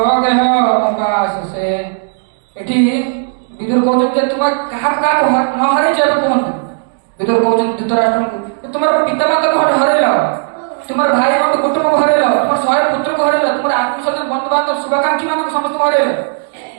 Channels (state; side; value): silent; left; digital silence